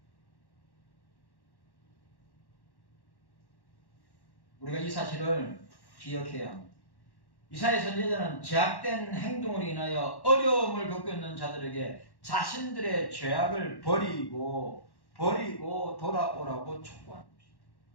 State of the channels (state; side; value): late; right; 1.1 ms